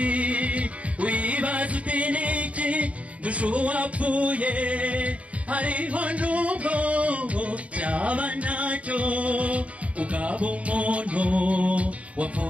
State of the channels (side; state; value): left; late; 0.065 ms